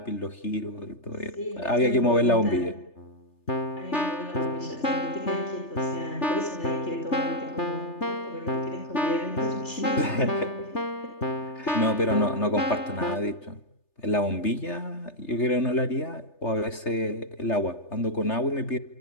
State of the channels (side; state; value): right; late; 3.3 ms